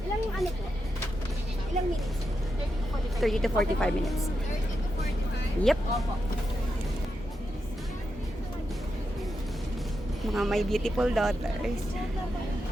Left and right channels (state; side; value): normal; both; correlation 0.86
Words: Ilang ano po? Ilang minutes? 30 to 45 minutes. Yep. Mga my beautiful daughters.